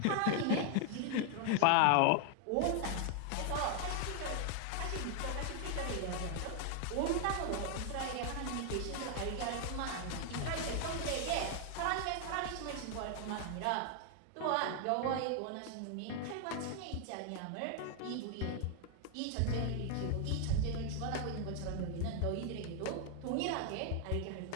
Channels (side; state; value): both; different; correlation 0.00